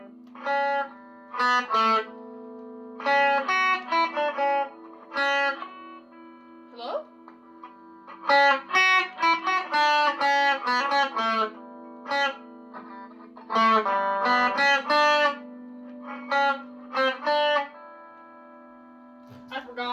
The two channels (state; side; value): identical; both; correlation 1.00